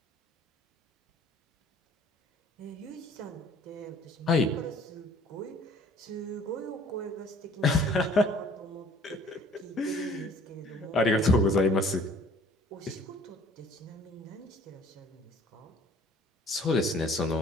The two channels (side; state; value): both; normal; correlation 0.53